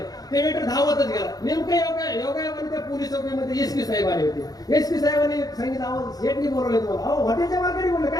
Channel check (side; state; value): right; late; 0.18 ms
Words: ते वेटर धावतच गेला. नेमकं योगायोगाने त्या पोलीस चौकीमध्ये एसपी साहेब आले होते. एसपी साहेबांनी सांगितलं अहो शेटनी बोलवले तुम्हाला. अहो हॉटेलच्या मालकाने बोलले